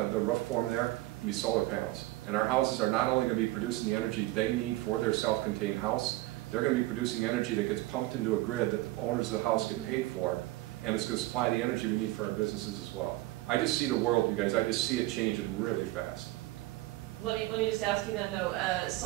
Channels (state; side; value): quieter; left; 18.3 dB